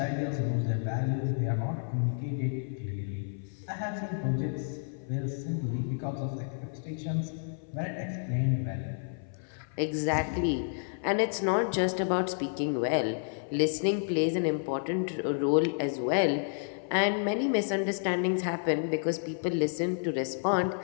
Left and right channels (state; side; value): silent; right; 57 dB below the other